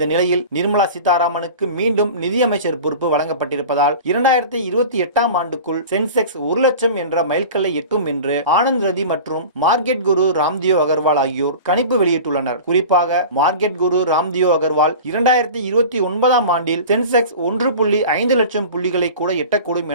நிலையில் நிர்மலா சீதாராமனுக்கு மீண்டும் நிதியமைச்சர் பொறுப்பு வழங்கப்பட்டிருப்பதால் 2028ஆம் ஆண்டுக்குள் சென்செக்ஸ் 1 லட்சம் என்ற மைல்கல்லை எட்டும் என்று ஆனந்த் ரதி மற்றும் மார்க்கெட் குரு ராம்தேவ் அகர்வால் ஆகியோர் கணிப்பு வெளியிட்டுள்ளனர். குறிப்பாக மார்க்கெட் குரு ராம்தேவ் அகர்வால் 2029ஆம் ஆண்டில் சென்செக்ஸ் 1.5 லட்சம் புள்ளிகளை கூட எட்டக்கூடும்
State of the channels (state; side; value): inverted; both; correlation -0.36